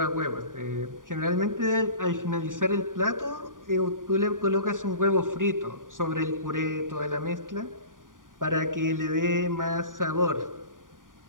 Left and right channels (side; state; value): left; late; 0.89 ms